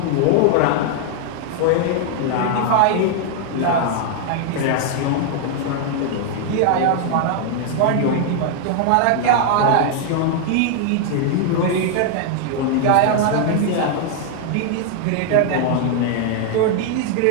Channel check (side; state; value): both; different; correlation 0.00